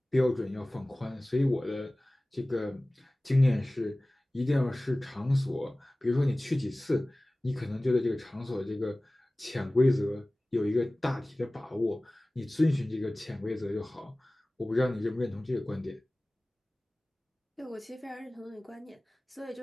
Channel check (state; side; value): normal; both; correlation 0.98